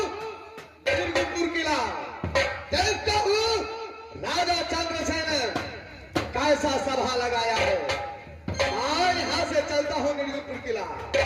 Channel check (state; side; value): identical; both; correlation 1.00